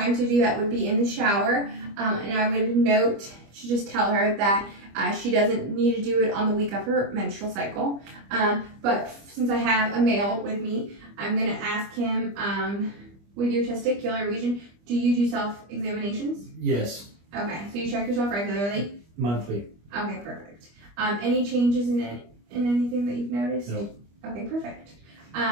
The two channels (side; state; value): left; late; 25 ms